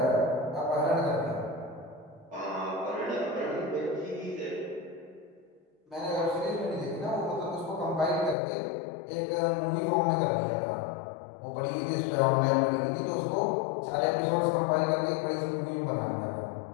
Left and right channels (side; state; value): right; drops out; at 8.3 s